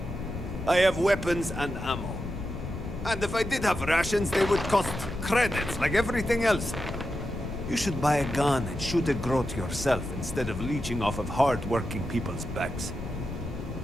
I have weapons and ammo. And if I did have rations, they would cost credits like everything else. You should buy a gun and shoot a growth yourself instead of leeching off of hard-working people's backs.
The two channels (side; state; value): left; noise; rumble, 8 dB below the sound